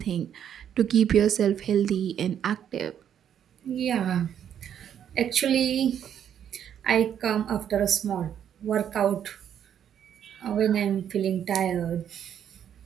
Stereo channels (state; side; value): quieter; left; 9.3 dB